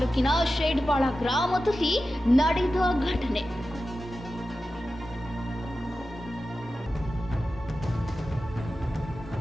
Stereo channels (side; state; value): both; normal; correlation 0.93